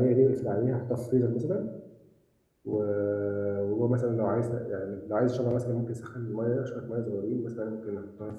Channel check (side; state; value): both; identical; correlation 1.00